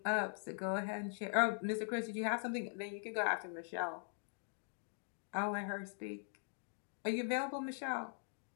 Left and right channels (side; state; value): right; silent; digital silence